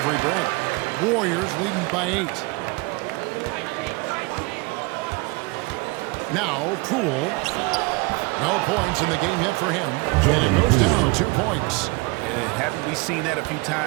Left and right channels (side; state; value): left; quieter; 26.3 dB